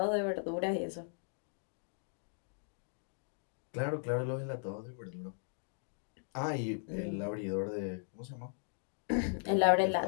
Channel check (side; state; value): right; silent; digital silence